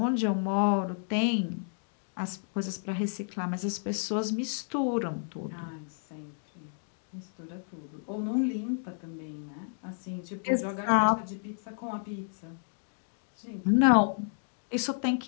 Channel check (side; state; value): right; silent; digital silence